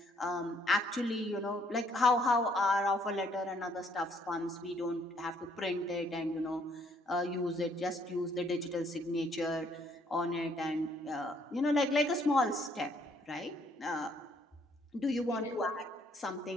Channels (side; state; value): both; normal; correlation 0.66